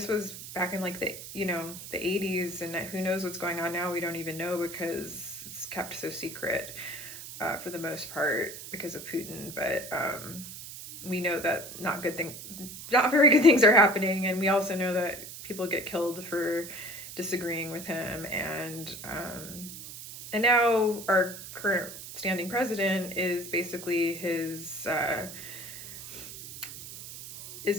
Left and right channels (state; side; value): noise; right; hiss, 12 dB below the sound